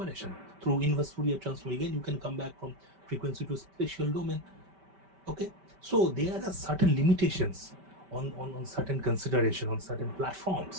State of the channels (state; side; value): late; left; 5.1 ms